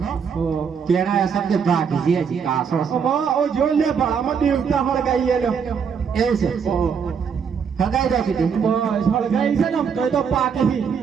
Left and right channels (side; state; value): left; quieter; 6.6 dB